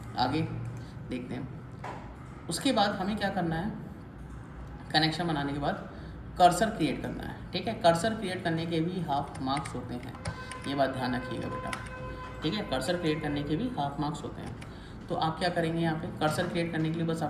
आगे देखते हैं। उसके बाद हमें क्या करना है, कनेक्शन बनाने के बाद कर्सर क्रिएट करना है, ठीक है। कर्सर क्रिएट करने के भी हाफ मार्क्स होते हैं, ये बात ध्यान रखिएगा बेटा, ठीक है। कर्सर क्रिएट करने के भी हाफ मार्क्स होते हैं। तो आप क्या करेंगे, यहाँ पे कर्सर क्रिएट करने के लिए बस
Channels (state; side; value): identical; both; correlation 1.00